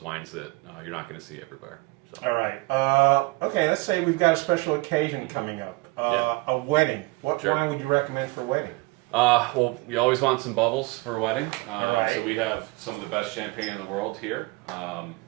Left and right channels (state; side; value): quieter; left; 24.9 dB